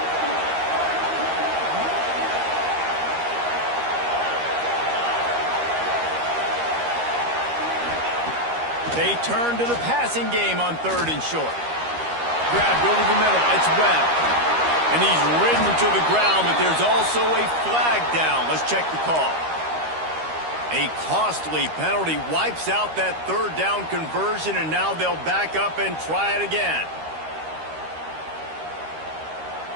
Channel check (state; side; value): late; left; 13 ms